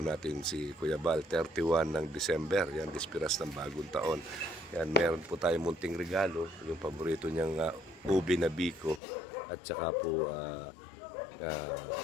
si Kuya Bal, 31 ng December. Yan, dispiras ng bagong taon. Yan, meron po tayong munting regalo, yung paborito niyang ubi na biko at saka po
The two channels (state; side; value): drops out; right; at 9.0 s